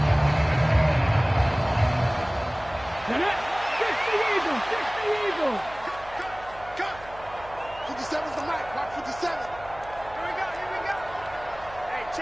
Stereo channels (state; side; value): noise; right; hum, 19 dB below the sound